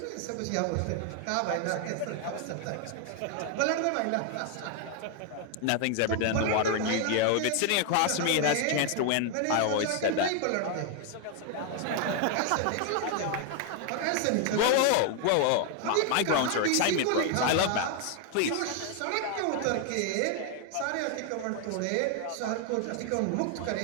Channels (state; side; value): different; both; correlation 0.00